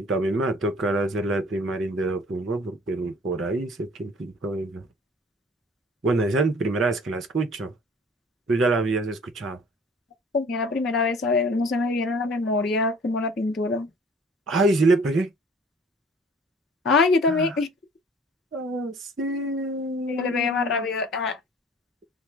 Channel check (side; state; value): both; normal; correlation 0.51